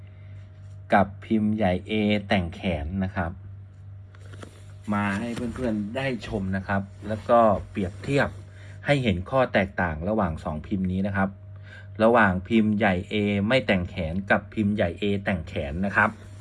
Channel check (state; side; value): identical; both; correlation 1.00